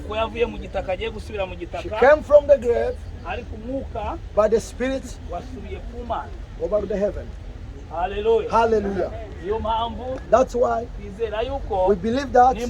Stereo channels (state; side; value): identical; both; correlation 1.00